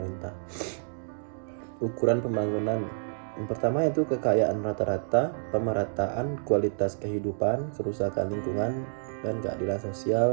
Ukuran pembangunan yang pertama itu kekayaan rata-rata, pemerataan kualitas kehidupan, kerusakan lingkungan, dan keadilan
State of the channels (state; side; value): silent; left; digital silence